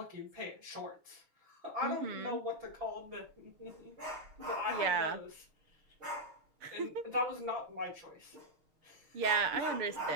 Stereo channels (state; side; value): late; left; 6.8 ms